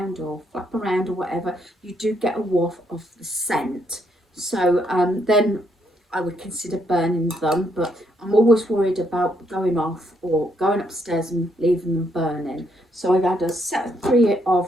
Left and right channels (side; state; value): both; normal; correlation 0.73